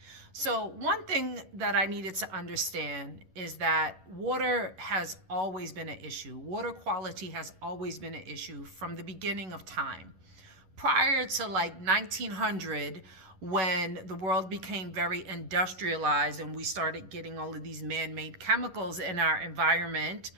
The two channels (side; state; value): left; late; 11 ms